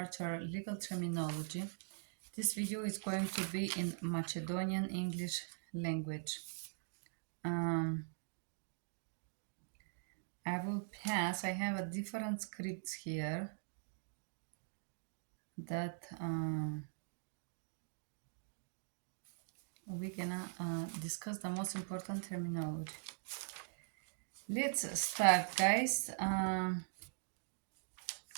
legal terminology. This video is going to be in Macedonian English language. I will pass. I have a different scripts here that we're gonna discuss the most important terminology. Let's start, guys.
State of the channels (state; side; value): silent; left; digital silence